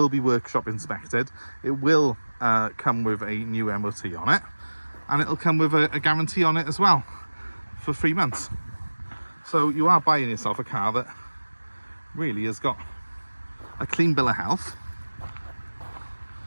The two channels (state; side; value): inverted; both; correlation -1.00